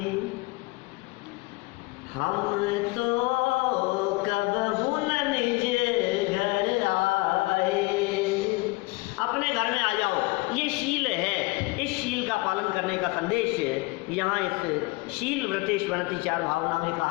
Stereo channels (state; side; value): quieter; right; 24.2 dB